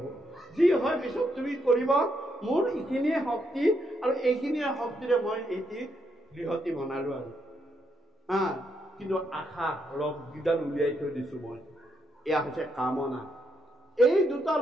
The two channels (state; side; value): normal; both; correlation 0.78